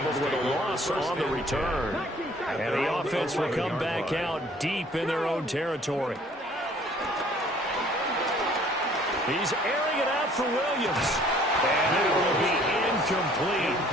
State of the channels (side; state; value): both; normal; correlation 0.56